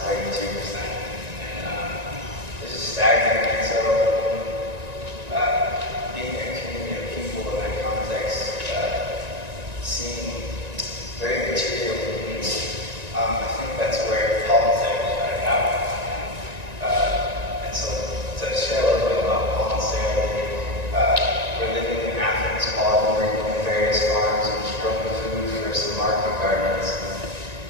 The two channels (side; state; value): left; late; 1.9 ms